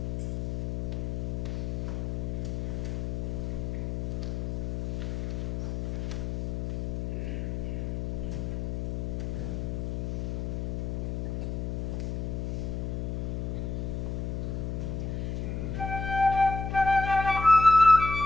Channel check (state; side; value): noise; left; hum, 2 dB below the sound